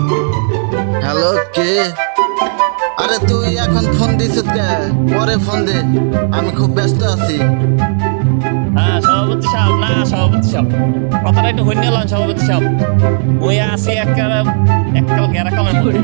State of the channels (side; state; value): left; silent; digital silence